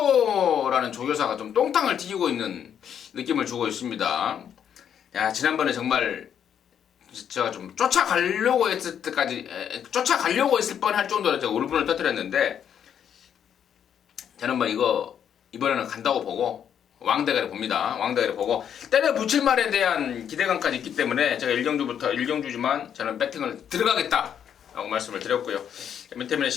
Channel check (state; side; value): quieter; right; 8.8 dB